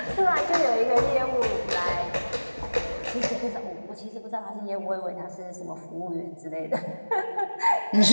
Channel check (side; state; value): both; inverted; correlation -1.00